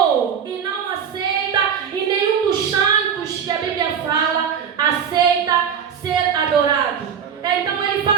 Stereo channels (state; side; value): quieter; left; 7.6 dB